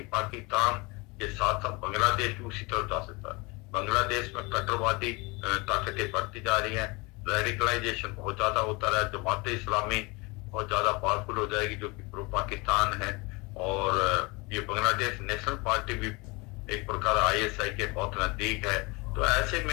पाकिस्तान के साथ साथ बांग्लादेश भी उसी तरफ जा सकता है। बांग्लादेश में कट्टरवादी ताकतें बढ़ती जा रही हैं, रेडिकलाइजेशन बहुत ज्यादा होता रहा है, जमात इस्लामी बहुत ज्यादा पावरफुल हो जाएगी जो कि प्रो पाकिस्तान है, और ये बांग्लादेश नेशनल पार्टी भी एक प्रकार ISI के बहुत नजदीक है। तो ऐसे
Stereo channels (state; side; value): quieter; right; 26.6 dB